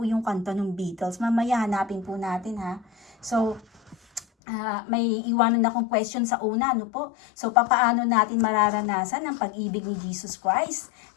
yung kanta ng Beatles. Mamaya hanapin po natin, ha? So, may iwanan akong question sa una, ano po? So, papaano natin mararanasan ang pag-ibig ni Jesus Christ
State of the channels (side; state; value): right; drops out; at 4.2 s